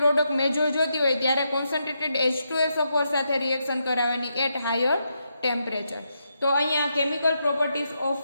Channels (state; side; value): inverted; both; correlation -0.82